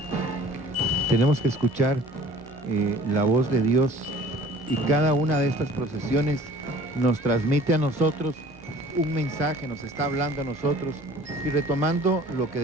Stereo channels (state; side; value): normal; both; correlation 0.49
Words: Tenemos que escuchar la voz de Dios, y cada una de estas procesiones nos transmite a nosotros un mensaje, nos está hablando a nosotros. Y retomando lo que